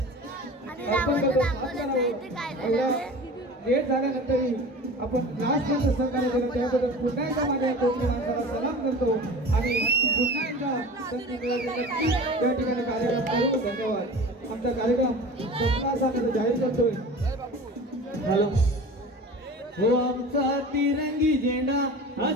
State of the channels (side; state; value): both; normal; correlation 0.37